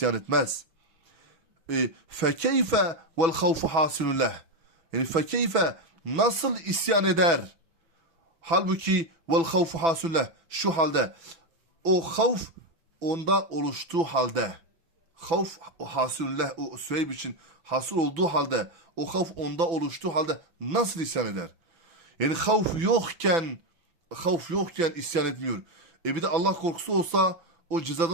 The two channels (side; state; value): left; late; 6.0 ms